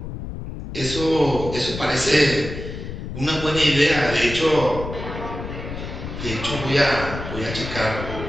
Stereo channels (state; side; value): noise; left; rumble, 8 dB below the sound